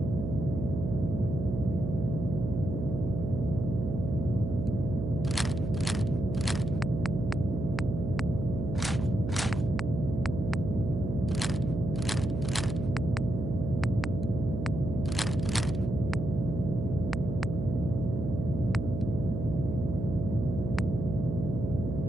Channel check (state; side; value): noise; right; hum, 3 dB below the sound